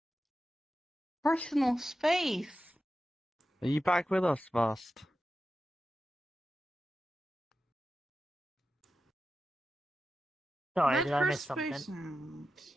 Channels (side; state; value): both; normal; correlation 0.92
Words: Personal space. Are you back with us, Vast? Sorry, That did I miss first something? space sound.